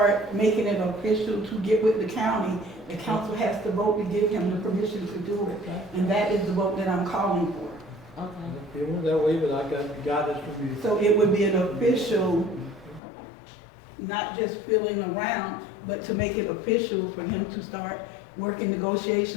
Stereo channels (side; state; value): right; drops out; at 13.0 s